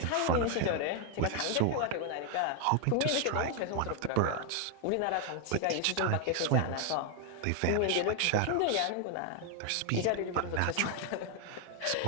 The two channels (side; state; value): both; different; correlation 0.00